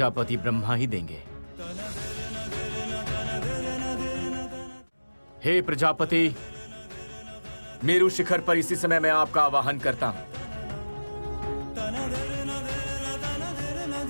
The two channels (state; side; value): inverted; both; correlation -1.00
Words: ब्रह्मा ही देंगे। हे प्रजापति, मेरु शिखर पर इसी समय मैं आपका आवाहन करता हूं।